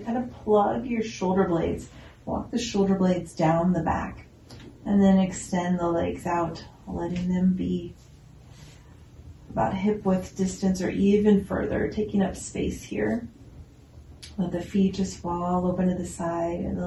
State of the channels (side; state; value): both; identical; correlation 1.00